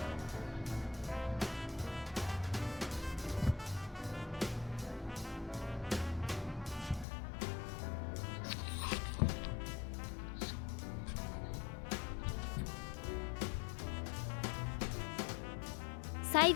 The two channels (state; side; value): drops out; right; at 7.1 s